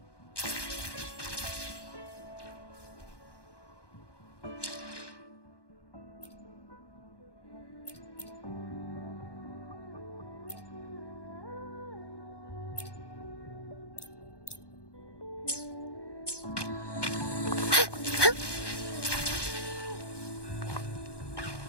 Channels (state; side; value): late; right; 1.2 ms